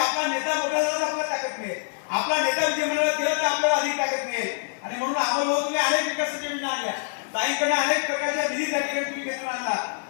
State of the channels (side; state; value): right; silent; digital silence